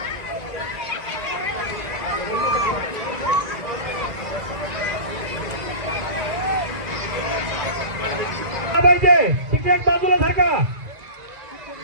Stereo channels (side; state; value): left; late; 1.9 ms